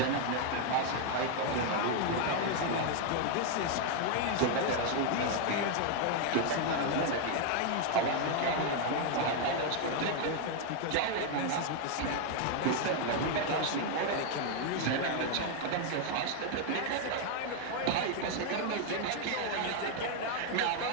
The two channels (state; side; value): different; both; correlation 0.01